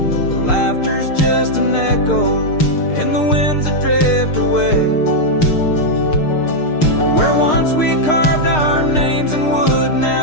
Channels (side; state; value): right; late; 6.6 ms